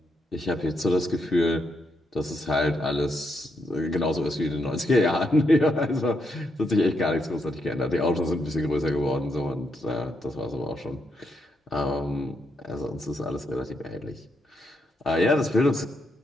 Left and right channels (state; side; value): normal; both; correlation 0.79